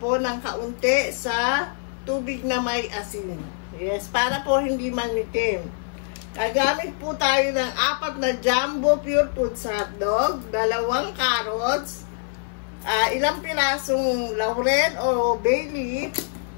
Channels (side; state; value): right; silent; 57 dB below the other